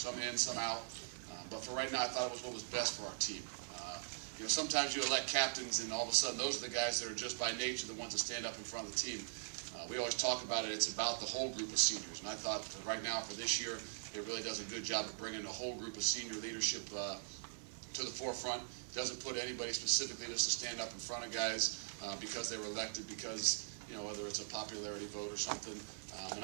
in, some out. But for right now, I thought it was what was best for our team. You know, sometimes you elect captains, and all of a sudden, those are the guys that are just by nature the ones that stand up in front of the team. We always talk about it. It's about the whole group of seniors, and I thought for right now, for this year, it really does a good job of bringing the whole group of senior leadership to the forefront. It doesn't put anybody specifically just to stand up in front of guys because they were elected, because, you know, whether it's a popularity vote or something. And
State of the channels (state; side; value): silent; left; 50 dB below the other